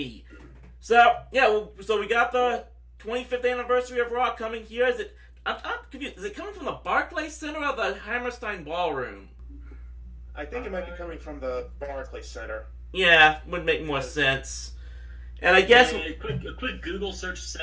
So, yeah, so we got the 25th anniversary of Raw coming here. I'm confused. Is it coming from the Barclays Center or the Hammerstein Ballroom? I think it might be coming from the Barclays Center. Yeah, would make more sense. And I guess... A quick Google search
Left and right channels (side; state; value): both; identical; correlation 1.00